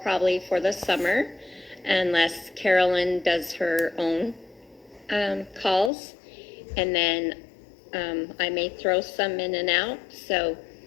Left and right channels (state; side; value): drops out; right; at 5.9 s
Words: probably for the summer, unless Carolyn does her own calls. And then I may throw some in and out. So,